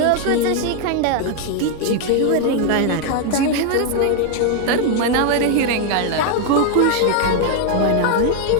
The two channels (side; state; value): both; different; correlation 0.00